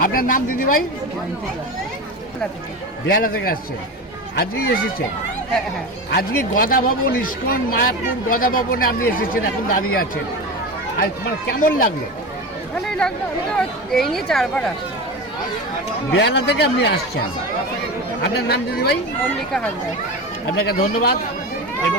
আপনার নাম দিদি ভাই? বেহালা থেকে আসছেন, আজকেই এসেছেন? আজকে গদা ভবন ইস্কন মায়াপুর গদা ভবনে আপনি এসেছেন, এখন দাঁড়িয়ে আছেন। আর মানে কেমন লাগলো? ভালোই লাগলো। আমি তো এই নিয়ে 4 বার আসছি। বেহালা থেকে আপনি আসছেন। আপনার নাম দিদি ভাই? মল্লিকা হালদার। আপনাকে ধন্যবাদ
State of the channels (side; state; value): both; normal; correlation 0.25